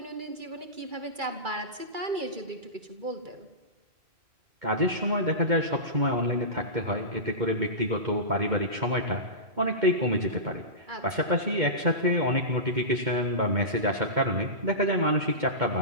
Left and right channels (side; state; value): left; late; 2.3 ms